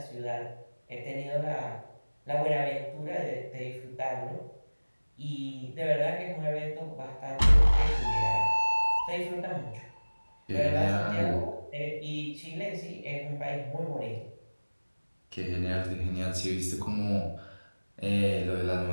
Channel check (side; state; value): both; inverted; correlation -1.00